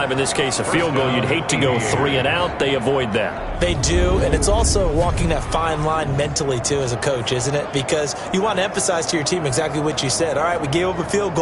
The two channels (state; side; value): identical; both; correlation 1.00